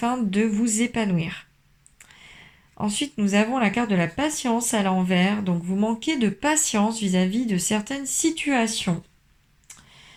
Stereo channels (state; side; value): identical; both; correlation 1.00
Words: de vous épanouir. Ensuite, nous avons la carte de la patience à l'envers. Donc, vous manquez de patience vis-à-vis de certaines situations.